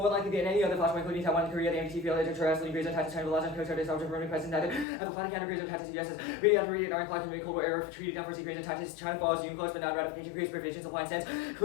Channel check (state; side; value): drops out; right; at 4.9 s